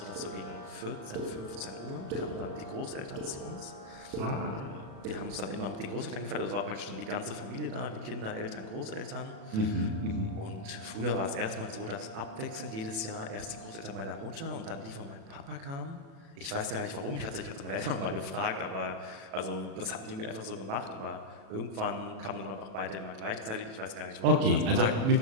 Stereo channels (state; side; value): late; left; 36 ms